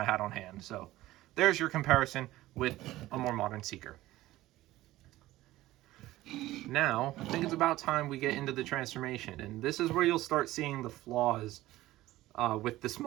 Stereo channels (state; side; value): quieter; left; 16.4 dB